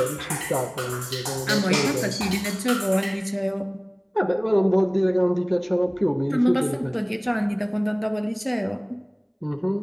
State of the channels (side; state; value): both; identical; correlation 1.00